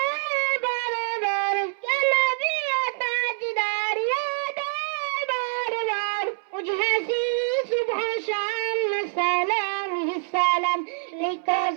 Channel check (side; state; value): left; silent; 61 dB below the other